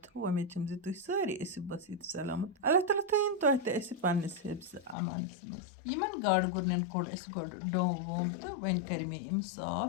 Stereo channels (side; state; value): right; drops out; at 5.0 s